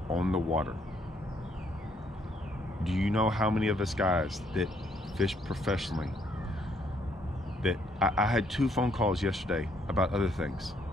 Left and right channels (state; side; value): normal; both; correlation 0.69